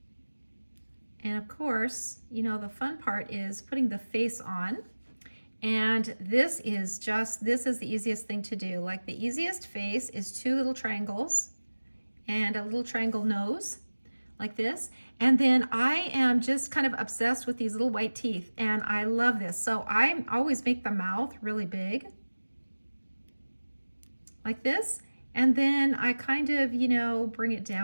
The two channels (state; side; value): inverted; both; correlation -1.00